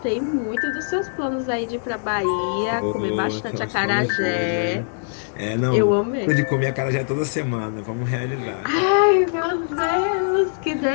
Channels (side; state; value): right; silent; digital silence